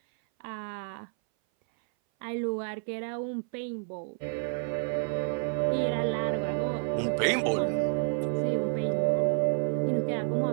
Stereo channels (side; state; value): left; silent; 58 dB below the other